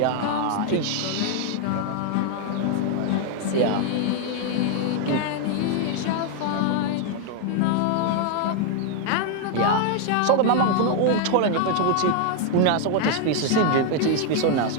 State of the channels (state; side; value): different; both; correlation 0.00